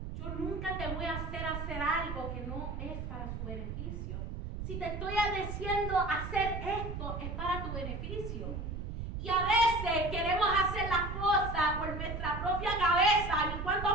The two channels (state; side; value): noise; right; rumble, 5 dB below the sound